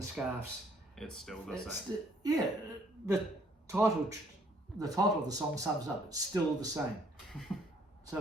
scarves. It's still the same. The title of the song sums up. It's still the same. So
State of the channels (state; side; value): normal; both; correlation 0.63